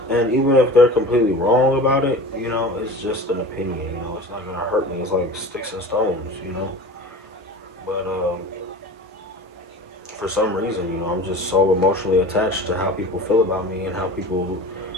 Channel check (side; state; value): both; normal; correlation 0.37